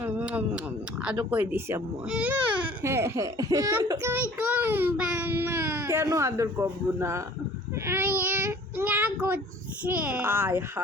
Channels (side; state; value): both; normal; correlation 0.50